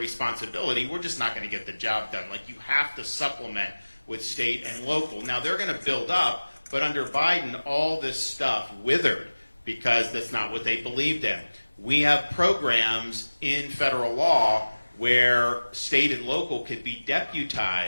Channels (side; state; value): both; inverted; correlation -1.00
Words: we're just not going to get the job done. Like, you have to supplement with state and local. Now, they're going to build up, but under Biden, all this stuff withered because that's not what they believed in. We have programs in federal law where state and local could be